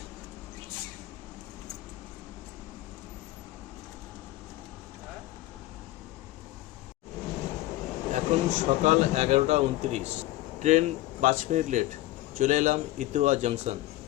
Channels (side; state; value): right; quieter; 16.9 dB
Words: এখন সকাল 11:29, ট্রেন 5 মিনিট লেট। চলে এলাম ইতুয়া জংশন।